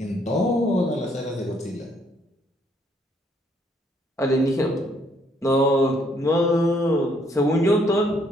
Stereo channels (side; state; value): both; normal; correlation 0.68